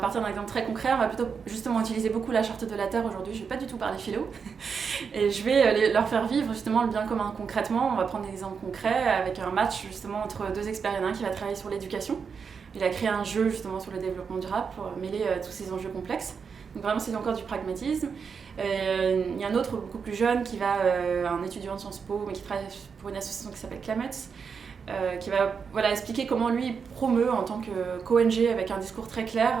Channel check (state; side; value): quieter; left; 6.0 dB